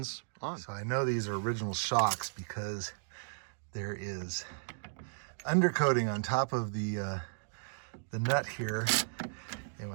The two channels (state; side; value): silent; left; digital silence